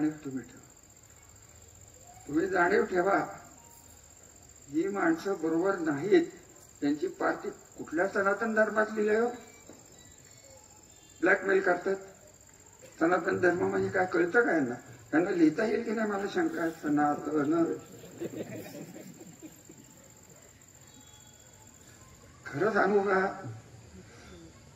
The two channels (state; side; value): identical; both; correlation 1.00